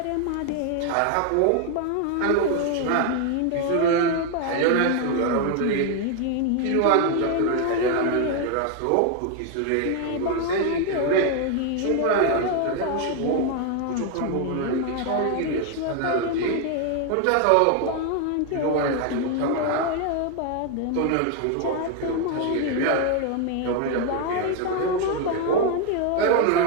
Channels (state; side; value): different; both; correlation 0.01